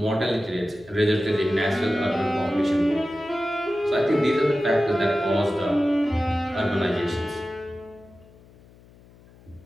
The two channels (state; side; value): noise; left; hum, 25 dB below the sound